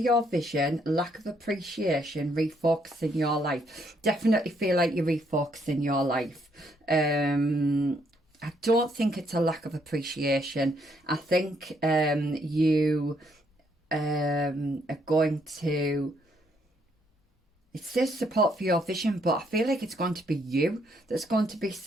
vision, lack of appreciation, refocusing your life. Definitely feel like you're refocusing your life. I don't think it's a lack of appreciation. I think you are going to... It says support for your vision, but I feel like it's going to be you that's going to be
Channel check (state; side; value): normal; both; correlation 0.72